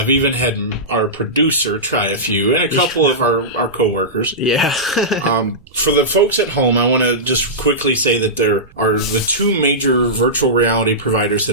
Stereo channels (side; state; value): right; noise; rumble, 26 dB below the sound